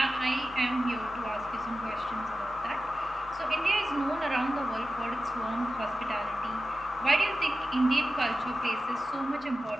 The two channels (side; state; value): both; normal; correlation 0.94